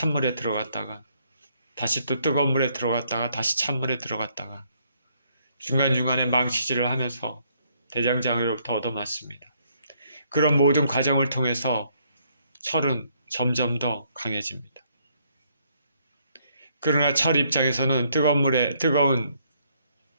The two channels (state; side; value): inverted; both; correlation -0.70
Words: 들어갔다가 다시 또 뜨거운 물에 들어갔다가 다시 찬물에 들어갔다가 중간중간에 망치질을 하면서 대장장으로부터 얻어맞습니다. 그런 모든 과정을 통해서 철은 점점 더 강해집니다. 그러나 철 입장에서는 뜨거운